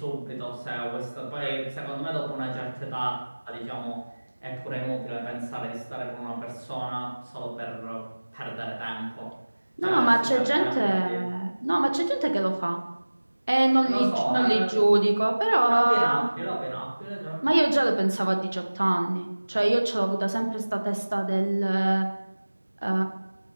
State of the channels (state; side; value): inverted; both; correlation -1.00